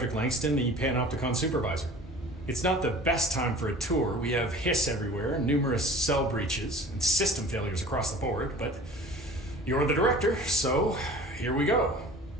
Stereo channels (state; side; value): normal; both; correlation 0.43